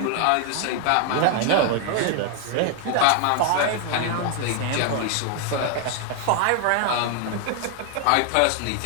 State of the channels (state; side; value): different; both; correlation 0.00